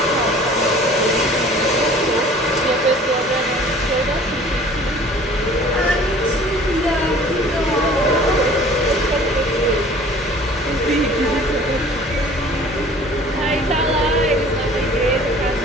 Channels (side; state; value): both; normal; correlation 0.49